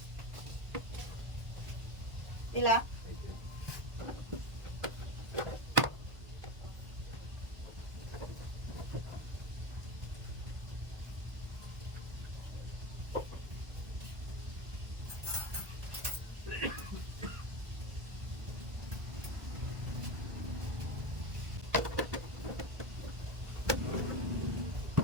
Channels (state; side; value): late; left; 1.5 ms